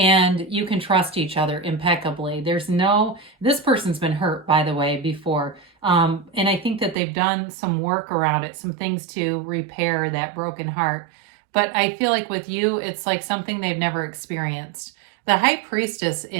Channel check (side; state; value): left; drops out; at 7.0 s